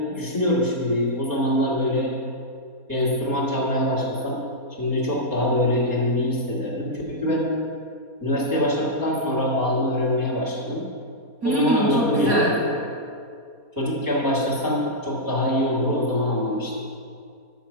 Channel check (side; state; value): left; late; 4.2 ms